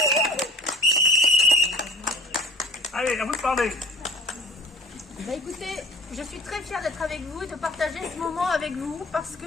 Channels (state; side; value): normal; both; correlation 0.45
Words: parler. Écoutez, je suis très fière d'être avec vous et de partager ce moment avec vous parce